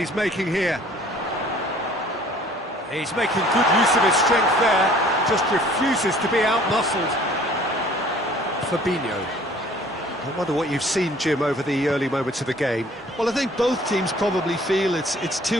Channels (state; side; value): normal; both; correlation 0.53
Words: making here. He's making good use of his strength there, just refuses to be out-muscled. Fabinho. I wonder what you've seen, Jim, over the early moments of the game. Well, I think both teams probably feel it's